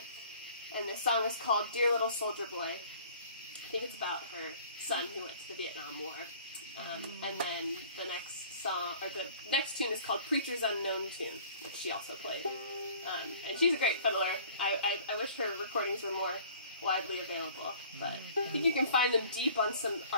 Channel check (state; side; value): inverted; both; correlation -0.50